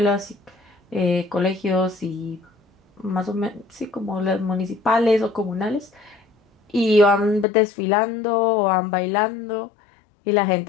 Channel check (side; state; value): right; drops out; at 7.5 s